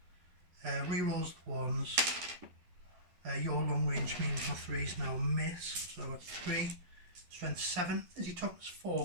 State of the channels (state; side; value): late; left; 11 ms